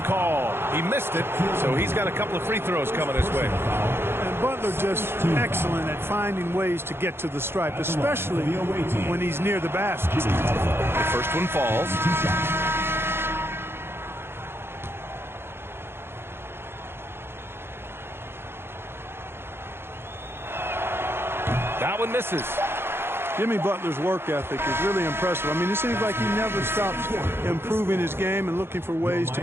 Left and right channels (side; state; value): left; late; 0.11 ms